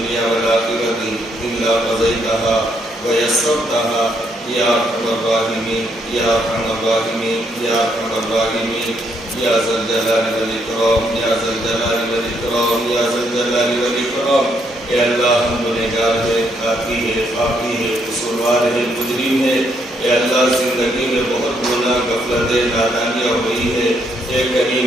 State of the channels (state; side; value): normal; both; correlation 0.74